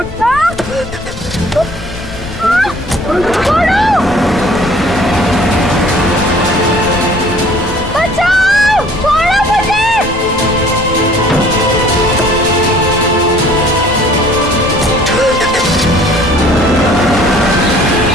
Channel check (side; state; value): left; noise; rumble, 13 dB below the sound